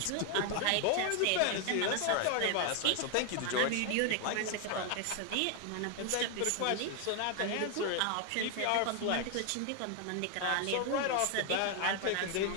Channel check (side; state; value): both; different; correlation 0.01